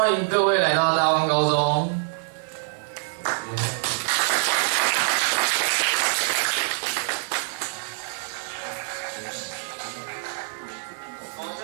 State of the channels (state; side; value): silent; left; digital silence